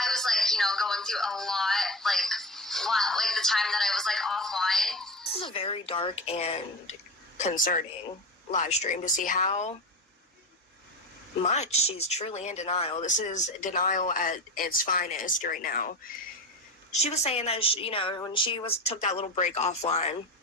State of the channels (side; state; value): both; normal; correlation 0.23